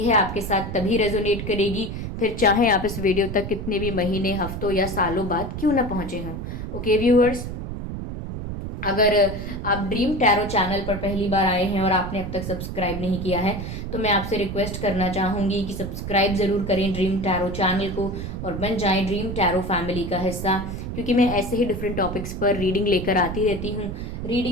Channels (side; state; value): right; noise; rumble, 6 dB below the sound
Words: आपके साथ तभी रेजोनेट करेगी, फिर चाहे आप इस वीडियो तक कितने भी महीने, हफ्तों या सालों बाद क्यों ना पहुंचे हों। ओके व्यूअर्स, अगर आप ड्रीम टैरो चैनल पर पहली बार आए हैं और आपने अब तक सब्सक्राइब नहीं किया है, तो मैं आपसे रिक्वेस्ट करना चाहूंगी कि सब्सक्राइब ज़रूर करें ड्रीम टैरो चैनल को और बन जाएं ड्रीम टैरो फैमिली का हिस्सा, क्योंकि मैं ऐसे ही डिफरेंट टॉपिक्स पर रीडिंग लेकर आती रहती हूँ।